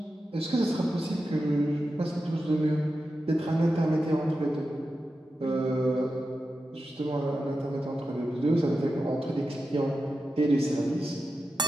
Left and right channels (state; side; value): normal; both; correlation 0.91